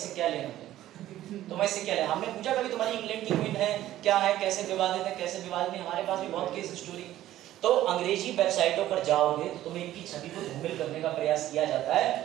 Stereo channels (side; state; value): left; quieter; 13.7 dB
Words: क्या लेना, तुम्हें इससे क्या लेना। हमने पूछा कभी तुम्हारी इंग्लैंड की क्वीन है क्या है, कैसे विवादित है कैसे विवादित नहीं। हमारे पास भी बहुत केस स्टोरी। तो अंग्रेजी वेबसाइटों पर जाओगे तो तुम्हें इनकी छवि को धूमिल करने का प्रयास किया जाता है,